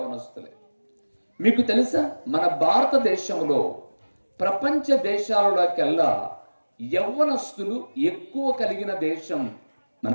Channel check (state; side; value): inverted; both; correlation -1.00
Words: మీకు తెలుసా, మన భారతదేశంలో ప్రపంచ దేశాలలోకెల్లా యవ్వనస్తులు ఎక్కువ కలిగిన దేశం